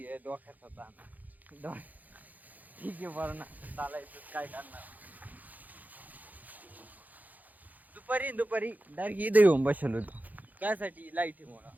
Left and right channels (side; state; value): left; late; 0.081 ms